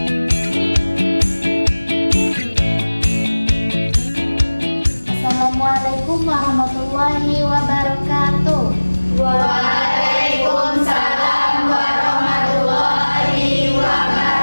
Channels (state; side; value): inverted; both; correlation -1.00